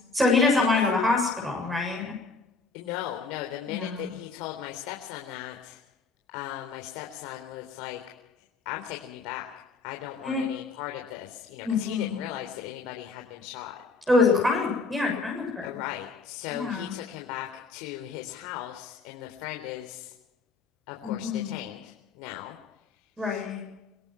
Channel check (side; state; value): right; quieter; 4.0 dB